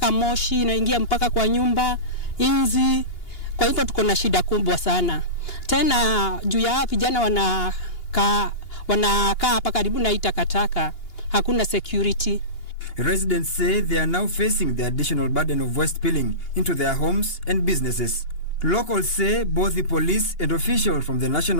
moshi inaingia mpaka kwa nyumba, inzi. Kwa hivyo tuko na shida kubwa sana. Tena juu ya vijana wanakaa hapa karibu na takataka, hakuna security. Residents say they are now facing the additional burden of waste spilling into their homes and businesses. Locals say both the police and officials from the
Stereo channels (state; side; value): late; right; 2.8 ms